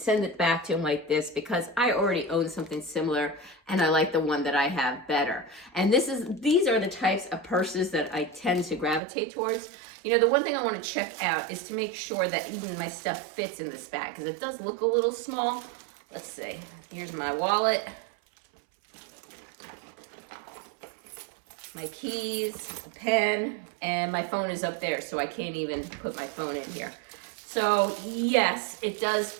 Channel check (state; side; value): drops out; left; at 9.0 s